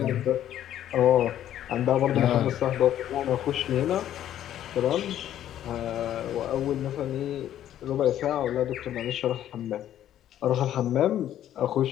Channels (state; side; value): quieter; right; 11.5 dB